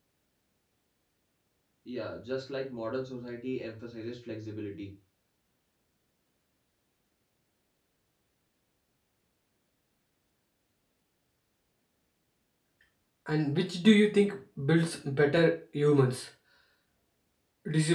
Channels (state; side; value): identical; both; correlation 1.00